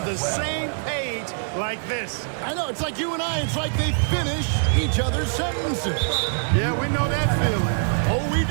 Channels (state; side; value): silent; left; digital silence